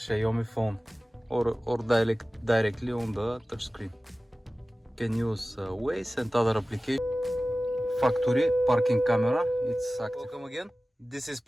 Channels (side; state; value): both; normal; correlation 0.96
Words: phone or directly on the touchscreen. Can use Waze and other applications. Factory parking camera, it's active. Welcome again. This is